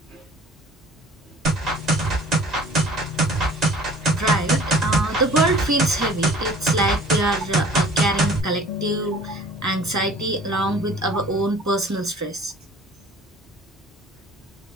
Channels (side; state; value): both; normal; correlation 0.49